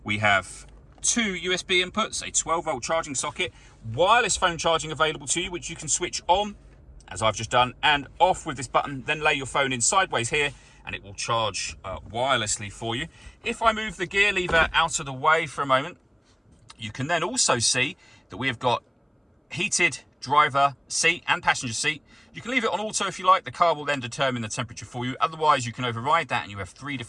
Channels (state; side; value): identical; both; correlation 1.00